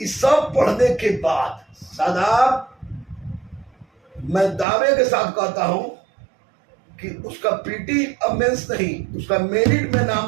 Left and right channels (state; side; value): drops out; left; at 4.7 s